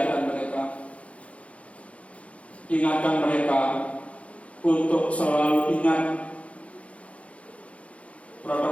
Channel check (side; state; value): right; late; 0.064 ms